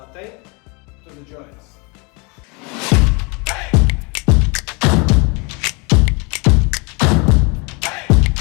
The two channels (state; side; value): quieter; right; 30.4 dB